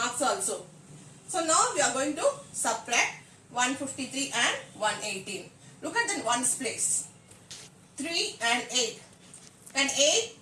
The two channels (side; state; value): both; identical; correlation 1.00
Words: also. So now we are going to subtract 153 and 118. Look at the ones place. 3 and 8. Can